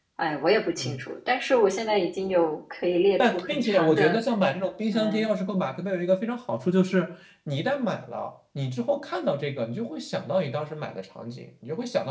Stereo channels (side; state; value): both; identical; correlation 1.00